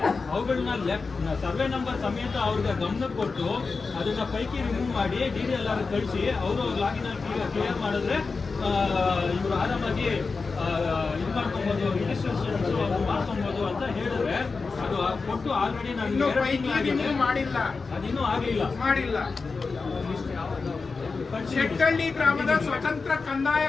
ಅವುಗಳನ್ನ ಸರ್ವೆ ನಂಬರ್ ಸಮೇತ ಅವ್ರಿಗೆ ಗಮನ ಕೊಟ್ಟು ಅದನ್ನ ಪೈಕಿ ರಿಮೂವ್ ಮಾಡಿ DDLR ಕಳಿಸಿ ಅವರು ಲಾಗಿನ್ ಕ್ಲಿಯರ್ ಮಾಡಿದ್ರೆ ಇವರು ಆರಾಮಾಗಿ ಇದು ಮಾಡ್ಕೊಬಹುದು, ರಿಜಿಸ್ಟ್ರೇಷನ್ ಮಾಡ್ಕೊಬಹುದು ಅಂತ ಹೇಳಿದ್ರೆ ಅದು ಕೊಟ್ಟು ಆಲ್ರೆಡಿ ನಾನು ಮಾಡಿಲ್ಲ, ಅದಿನ್ನೂ ಮಾಡಿಲ್ಲ. ಶೆಟ್ಟಳ್ಳಿ ಗ್ರಾಮದ ಸ್ವತಂತ್ರ ಕಂದಾಯ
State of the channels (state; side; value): quieter; right; 4.4 dB